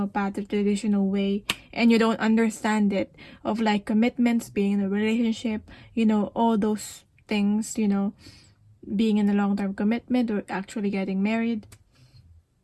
path, the traditional way, and you don't understand it, of like commitments, being in a relationship, you know, all those things, you know, being in a long-term commitment or actually getting married.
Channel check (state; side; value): identical; both; correlation 1.00